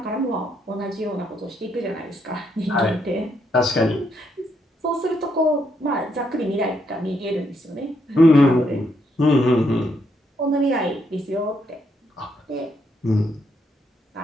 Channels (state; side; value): normal; both; correlation 0.76